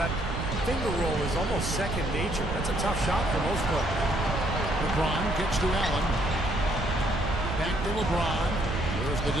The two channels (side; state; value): right; noise; rumble, 4 dB below the sound